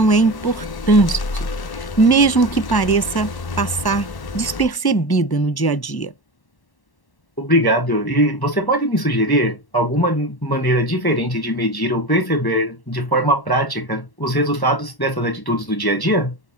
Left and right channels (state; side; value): late; right; 1.1 ms